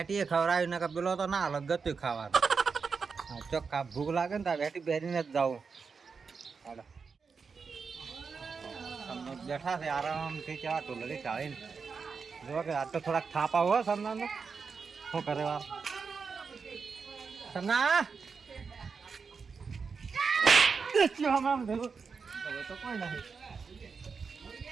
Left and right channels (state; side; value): quieter; left; 5.3 dB